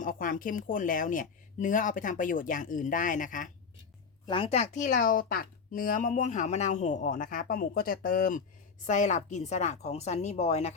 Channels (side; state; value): right; quieter; 5.6 dB